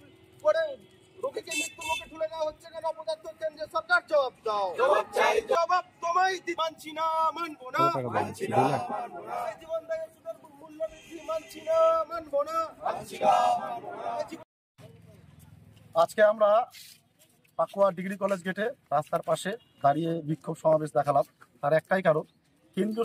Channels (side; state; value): both; identical; correlation 1.00